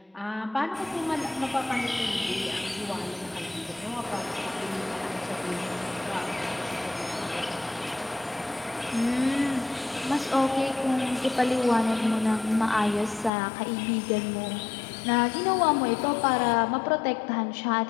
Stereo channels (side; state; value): right; drops out; at 13.3 s